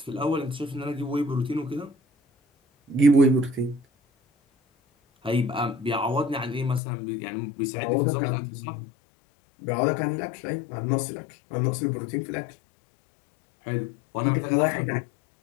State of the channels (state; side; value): drops out; right; at 6.8 s